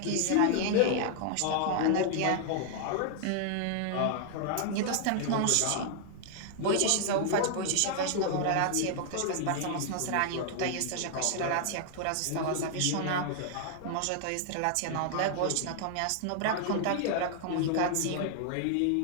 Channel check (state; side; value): different; both; correlation 0.00